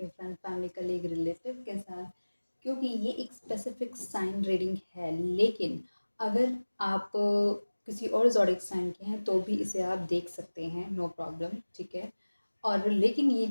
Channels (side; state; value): both; inverted; correlation -1.00